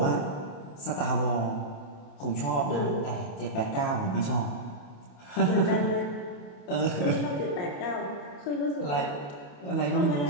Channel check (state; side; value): late; right; 28 ms